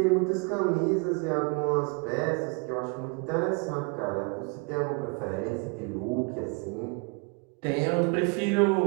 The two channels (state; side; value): quieter; left; 32.4 dB